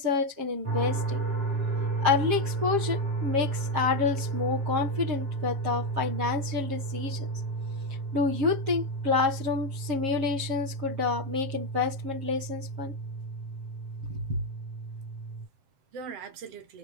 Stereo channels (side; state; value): left; late; 7.4 ms